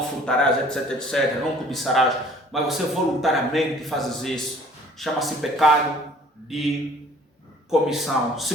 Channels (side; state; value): both; normal; correlation 0.54